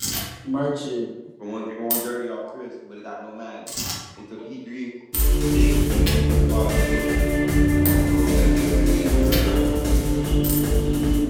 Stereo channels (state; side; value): identical; both; correlation 1.00